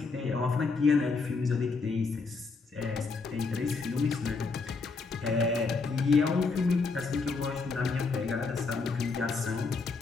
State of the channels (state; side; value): quieter; right; 4.3 dB